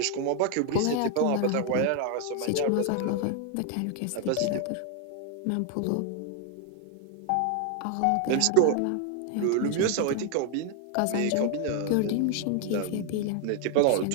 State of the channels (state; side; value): different; both; correlation 0.00